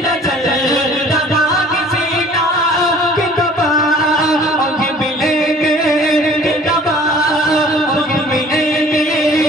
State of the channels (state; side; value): normal; both; correlation 0.50